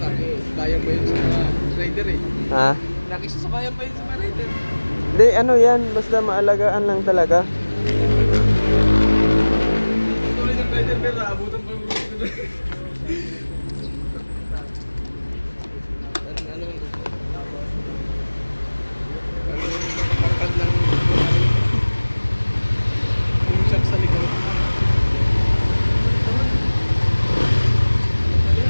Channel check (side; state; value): both; inverted; correlation -1.00